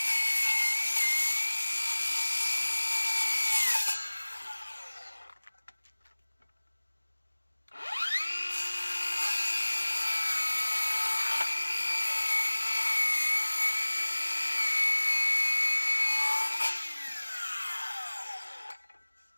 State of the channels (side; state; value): both; inverted; correlation -1.00